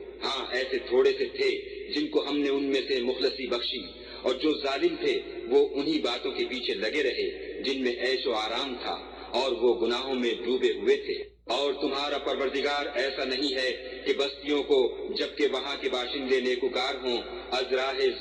ہاں ایسے تھوڑے سے تھے جن کو ہم نے ان میں سے مخلصی بخشی، اور جو ظالم تھے وہ انہی باتوں کے پیچھے لگے رہے جن میں عیش و آرام تھا، اور وہ گناہوں میں ڈوبے ہوئے تھے۔ اور تمہارا پروردگار ایسا نہیں ہے کہ بستیوں کو جبکہ وہاں کے باشندے نیکوکار ہوں از راہ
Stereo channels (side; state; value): both; identical; correlation 1.00